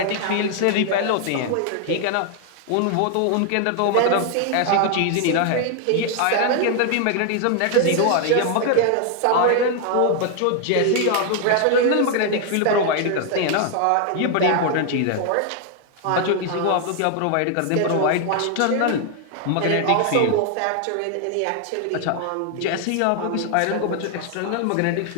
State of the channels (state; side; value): different; both; correlation 0.00